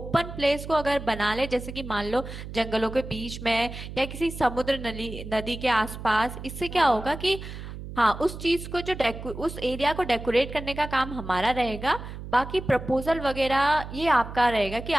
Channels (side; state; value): right; noise; hum, 10 dB below the sound